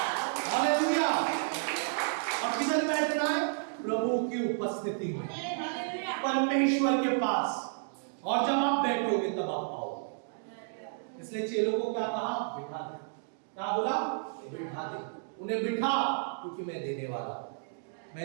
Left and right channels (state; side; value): silent; left; digital silence